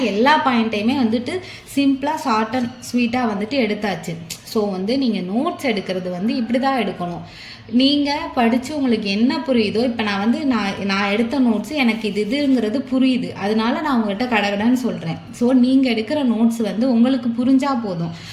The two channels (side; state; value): both; identical; correlation 1.00